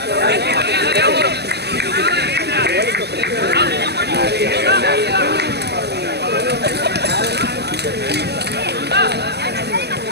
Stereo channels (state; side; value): late; left; 0.48 ms